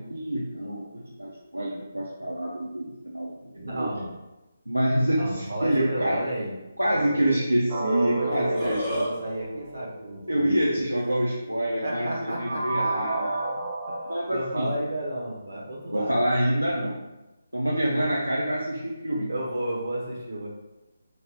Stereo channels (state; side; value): inverted; both; correlation -0.90